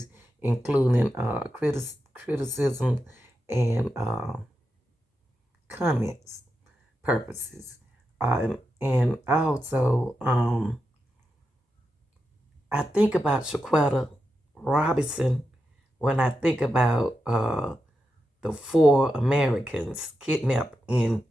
including criticism and comments purposes. And also, I think about Shaquetta Robinson when I think about the four Americans kidnapped in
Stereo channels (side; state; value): both; normal; correlation 0.88